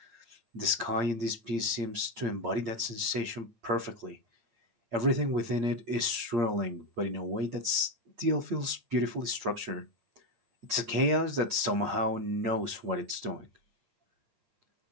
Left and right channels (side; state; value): left; late; 8.6 ms